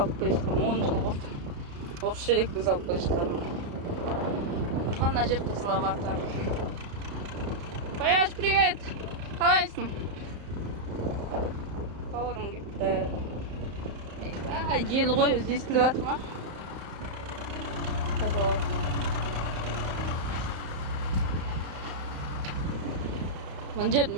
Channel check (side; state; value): left; late; 34 ms